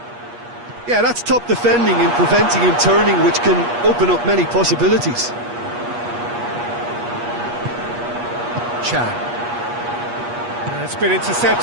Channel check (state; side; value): late; left; 8.4 ms